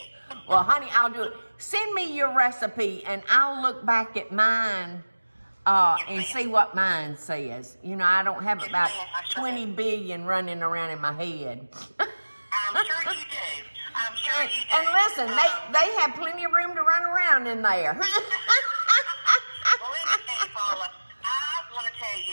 Well, honey, I'll do it. Send me your recipe, and I'll look back at mine and see what mine says. You know, I don't have about 20 billion running around in my head. I'm sure you do. I'm sure you do. And listen, they have plenty of room to run around in there. Well, let me tell you, Paula, I want to tell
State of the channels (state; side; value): inverted; both; correlation -1.00